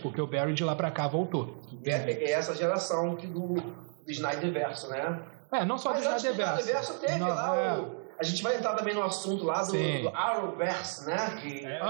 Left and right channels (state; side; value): silent; left; 57 dB below the other